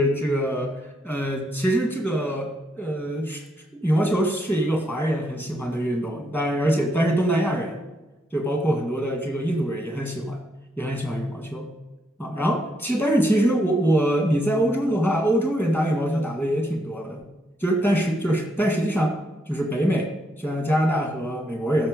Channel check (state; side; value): normal; both; correlation 0.77